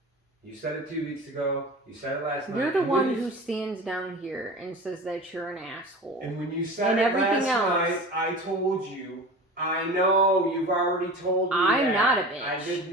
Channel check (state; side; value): normal; both; correlation 0.34